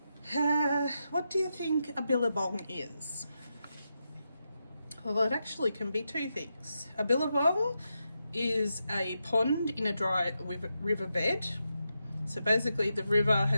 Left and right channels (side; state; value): both; inverted; correlation -0.87